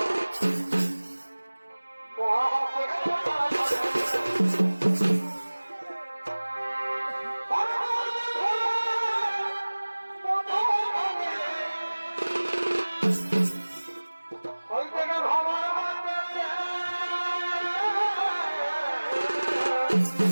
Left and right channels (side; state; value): both; inverted; correlation -1.00